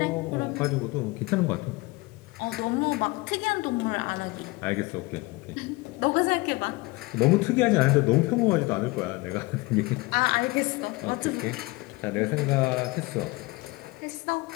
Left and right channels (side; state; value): right; quieter; 23.2 dB